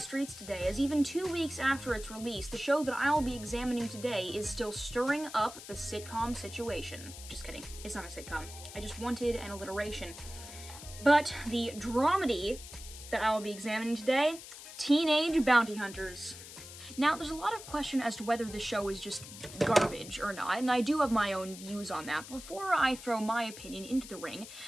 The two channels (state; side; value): noise; left; hiss, 14 dB below the sound